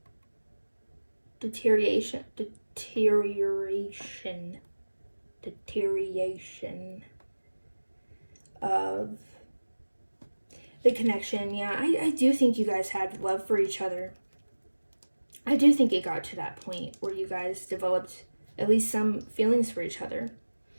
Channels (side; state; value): both; inverted; correlation -1.00